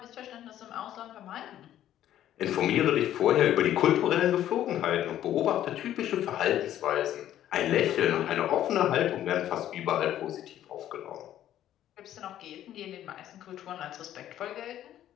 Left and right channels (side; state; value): right; quieter; 12.0 dB